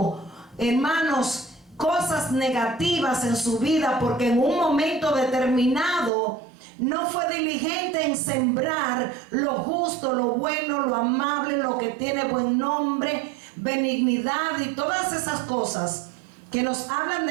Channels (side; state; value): left; drops out; at 6.1 s